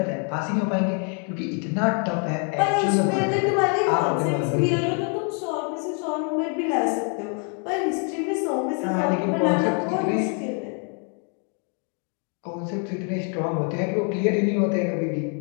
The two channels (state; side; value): quieter; right; 39.3 dB